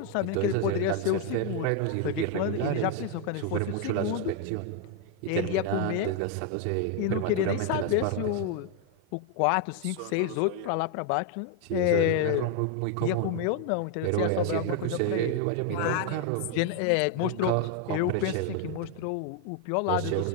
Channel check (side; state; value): both; different; correlation 0.01